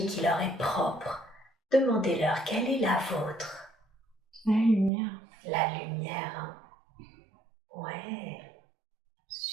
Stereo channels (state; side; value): drops out; left; at 4.9 s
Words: qui leur est propre. Demandez-leur, quelle est la vôtre? La lumière. La lumière, hein. Ouais,